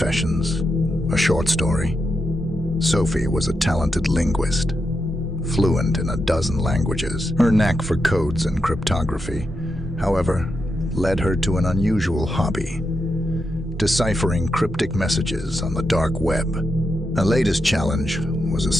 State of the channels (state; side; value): normal; both; correlation 0.86